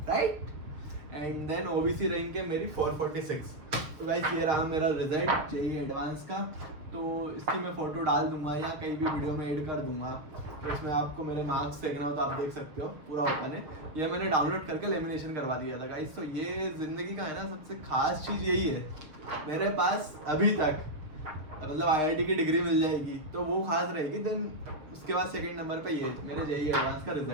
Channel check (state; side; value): late; left; 6.5 ms